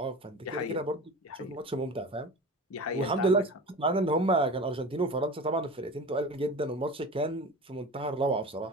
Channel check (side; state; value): both; normal; correlation 0.34